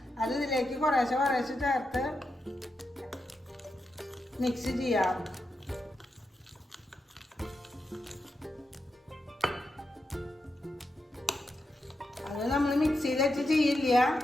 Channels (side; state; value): both; normal; correlation 0.87